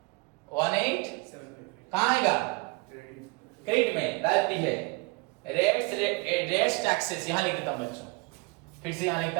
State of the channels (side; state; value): left; quieter; 27.7 dB